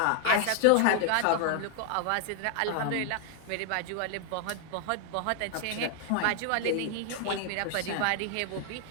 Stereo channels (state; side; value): different; both; correlation 0.00